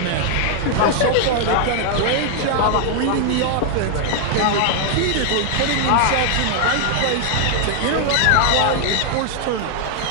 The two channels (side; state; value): both; different; correlation 0.00